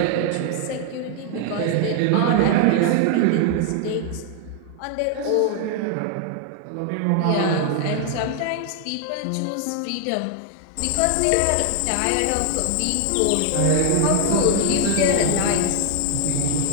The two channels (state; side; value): different; both; correlation 0.00